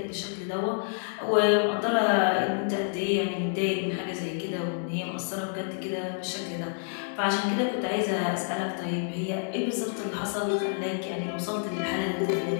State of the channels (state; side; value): silent; right; digital silence